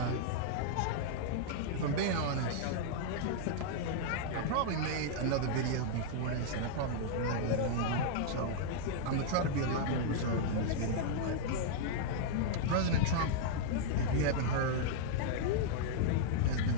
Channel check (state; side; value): different; both; correlation -0.01